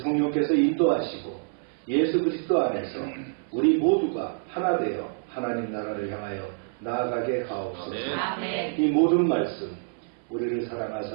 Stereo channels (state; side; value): silent; left; 60 dB below the other